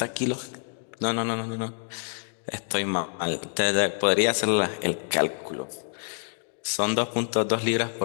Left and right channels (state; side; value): silent; right; 60 dB below the other